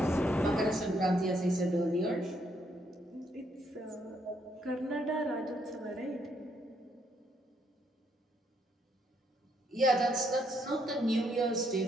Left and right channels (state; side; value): normal; both; correlation 0.73